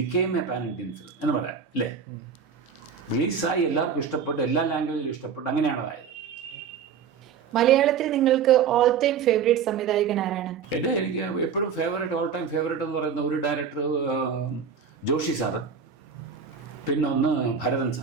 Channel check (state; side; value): quieter; left; 6.7 dB